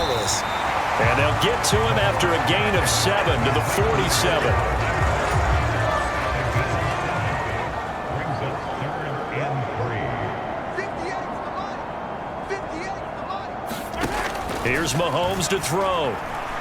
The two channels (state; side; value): identical; both; correlation 1.00